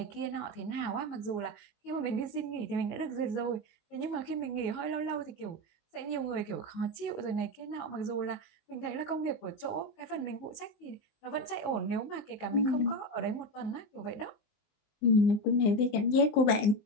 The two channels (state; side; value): late; right; 19 ms